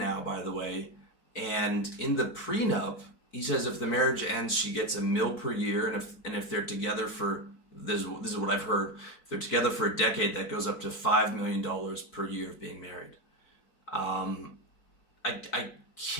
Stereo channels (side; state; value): right; late; 4.5 ms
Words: by the way. And in the prenup, he says if the marriage ends, she gets $1 million per year. And if they're together for, this is what I've heard, if they're together for a decade, that goes up to $5 million per year of being married. I